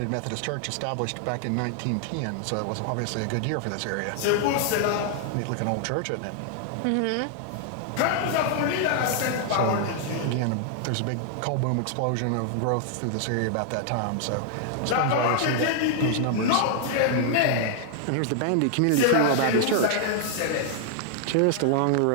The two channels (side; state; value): both; different; correlation 0.00